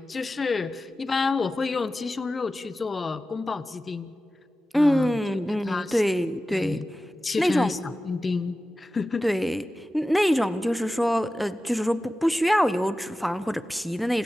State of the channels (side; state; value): both; normal; correlation 0.95